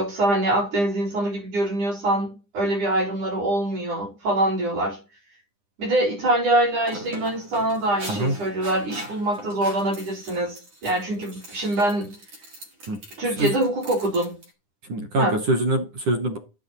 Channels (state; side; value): late; left; 9.9 ms